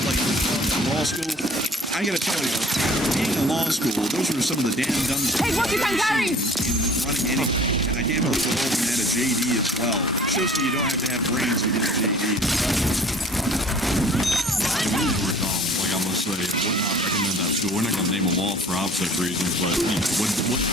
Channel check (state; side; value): normal; both; correlation 0.49